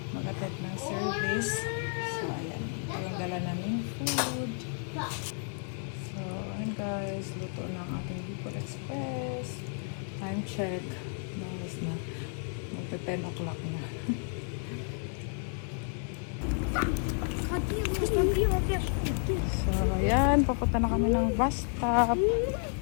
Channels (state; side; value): silent; right; 55 dB below the other